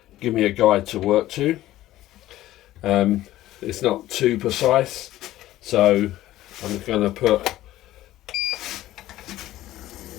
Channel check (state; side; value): quieter; right; 15.0 dB